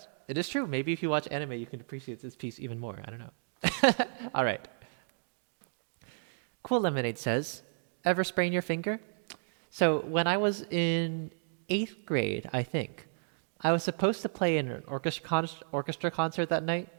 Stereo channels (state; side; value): silent; left; digital silence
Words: it is true. Maybe if you watch anime, you can appreciate this piece even more. I don't know. All right. Cool Lemonade says, ever sprain your finger? So when I was in 8th grade, I think, I was supposed to play in an orchestra concert that night,